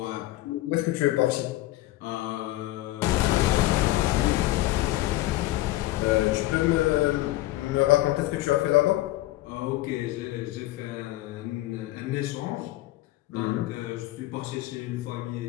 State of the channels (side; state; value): right; quieter; 17.0 dB